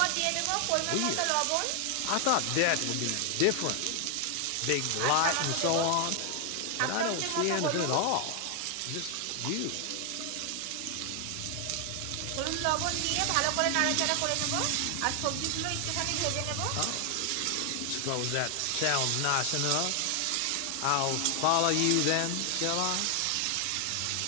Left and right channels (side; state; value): both; different; correlation 0.00